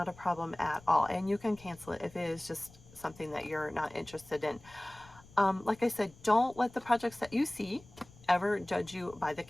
a problem at all, and you can cancel it if it is just something that you're not interested in. Like I said, don't let the projects that you see ever judge you by the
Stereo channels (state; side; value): noise; left; rumble, 23 dB below the sound